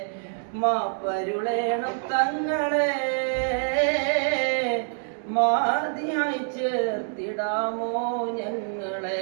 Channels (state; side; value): silent; left; 61 dB below the other